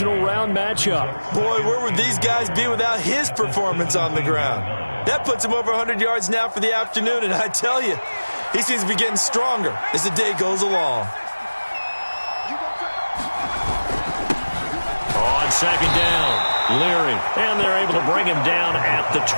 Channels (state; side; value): inverted; both; correlation -1.00